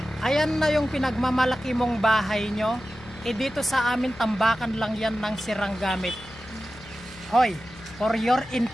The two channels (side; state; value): left; noise; hum, 20 dB below the sound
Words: Ayan na yung pinagmamalaki mong bahay nyo. Dito sa amin, tambakan lang yan ng sirang gamit. Hoy, for your